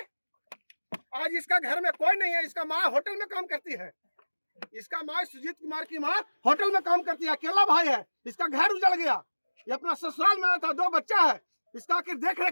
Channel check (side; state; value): both; inverted; correlation -1.00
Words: आज इसका घर में कोई नहीं है, इसका माँ होटल में काम करती है, इसका माँ सुजीत कुमार की माँ होटल में काम करती है, अकेला भाई है, इसका घर उजड़ गया, ये अपना ससुराल में था, 2 बच्चा है, इसका आखिर देख